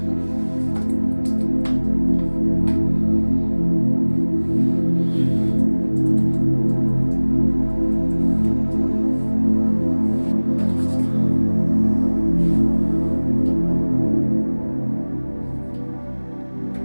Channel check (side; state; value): both; inverted; correlation -1.00